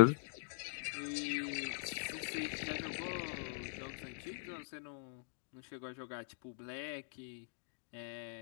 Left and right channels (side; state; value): right; silent; digital silence